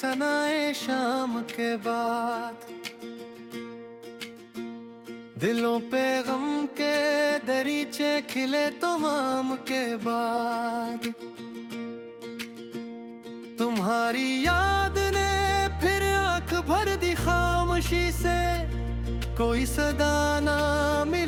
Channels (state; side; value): identical; both; correlation 1.00